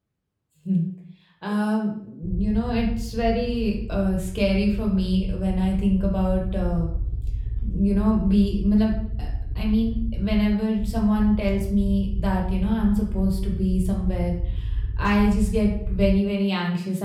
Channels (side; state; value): both; identical; correlation 1.00